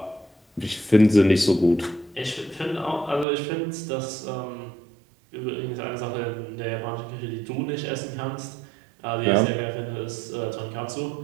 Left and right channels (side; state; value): left; drops out; at 3.2 s